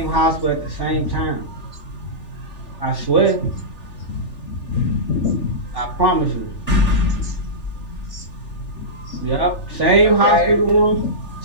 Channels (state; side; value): late; right; 3.4 ms